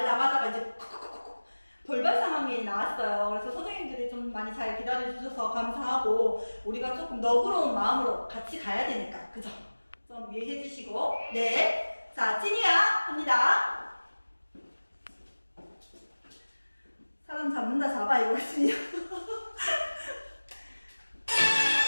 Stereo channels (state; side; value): inverted; both; correlation -1.00